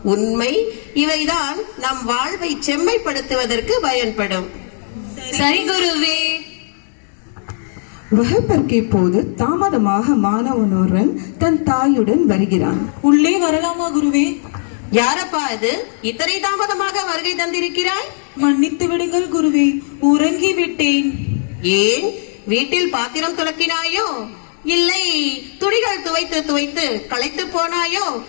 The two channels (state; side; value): silent; right; digital silence